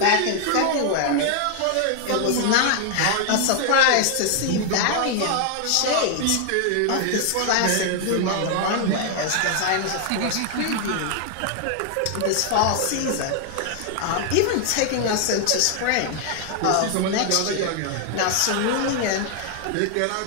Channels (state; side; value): different; both; correlation 0.00